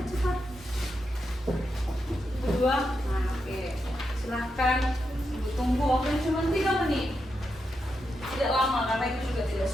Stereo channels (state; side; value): normal; both; correlation 0.85